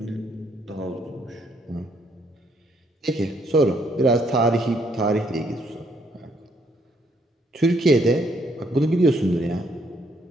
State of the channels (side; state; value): both; normal; correlation 0.70